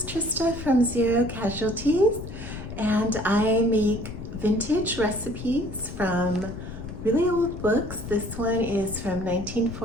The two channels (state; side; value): noise; left; rumble, 10 dB below the sound